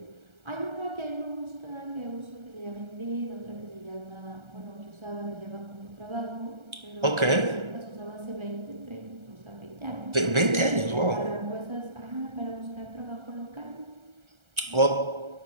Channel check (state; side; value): late; left; 1.3 ms